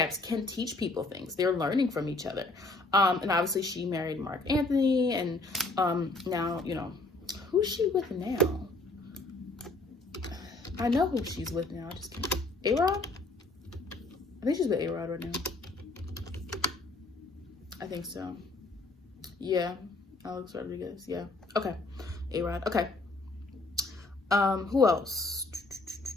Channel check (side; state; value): right; quieter; 3.1 dB